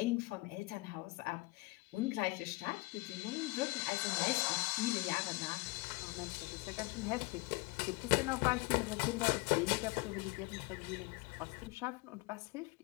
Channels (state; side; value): quieter; right; 24.3 dB